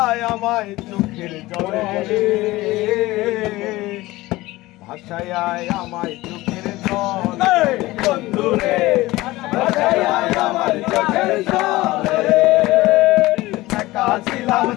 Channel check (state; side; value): quieter; right; 18.9 dB